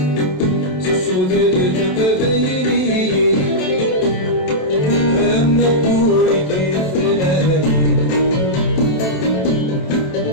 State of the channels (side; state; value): right; late; 27 ms